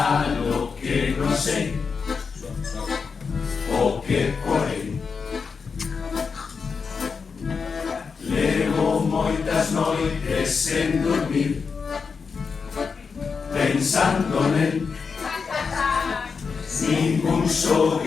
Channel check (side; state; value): right; quieter; 5.4 dB